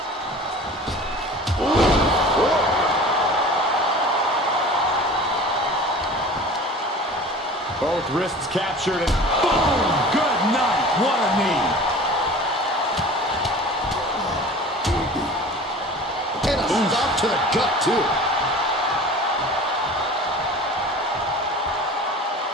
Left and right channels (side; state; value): both; normal; correlation 0.40